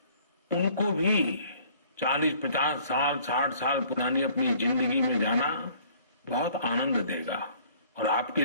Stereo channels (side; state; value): both; inverted; correlation -0.56